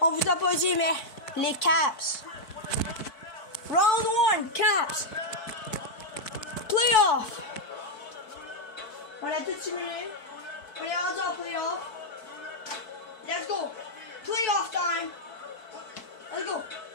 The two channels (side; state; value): right; late; 4.6 ms